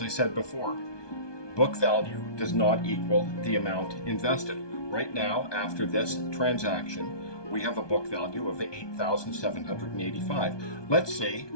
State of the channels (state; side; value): late; right; 1.2 ms